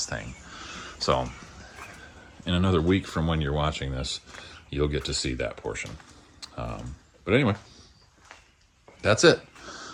thing. So in another week from when you're watching this, you'll get to see that portion. But anyway, that's it.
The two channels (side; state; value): both; identical; correlation 1.00